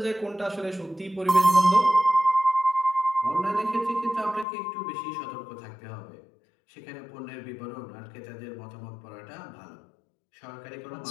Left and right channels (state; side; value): drops out; right; at 4.5 s